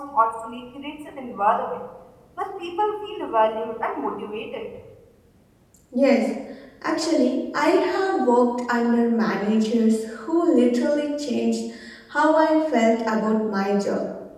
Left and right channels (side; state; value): both; identical; correlation 1.00